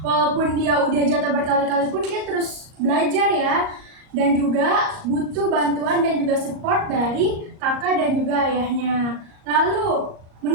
walaupun dia udah jatuh berkali-kali pun dia terus belajar ya. Dan juga butuh bantuan dan juga support dari kakak dan juga ayahnya. Lalu,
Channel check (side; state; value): left; late; 38 ms